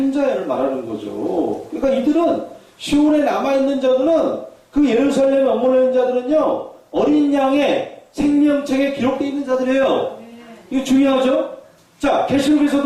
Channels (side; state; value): both; identical; correlation 1.00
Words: 자를 말하는 거죠. 그러니까 이들은 시온에 남아있는 자들은 그 예루살렘에 머물러 있는 자들은요, 어린 양의 생명책에 기록되어 있는 자들이에요. 이거 중요하죠? 자,